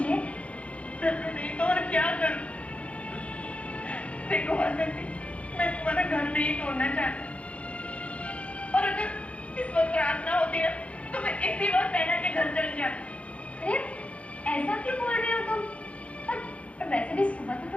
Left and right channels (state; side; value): late; right; 0.063 ms